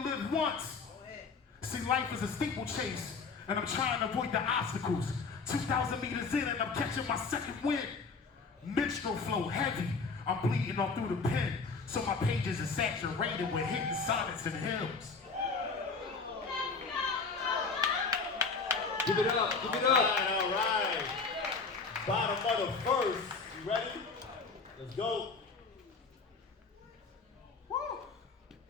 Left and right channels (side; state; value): right; quieter; 4.6 dB